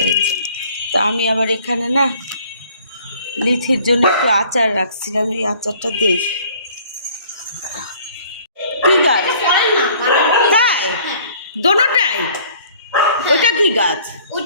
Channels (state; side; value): inverted; both; correlation -0.54